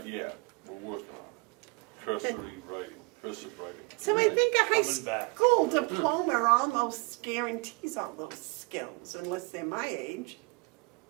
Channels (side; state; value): left; quieter; 28.2 dB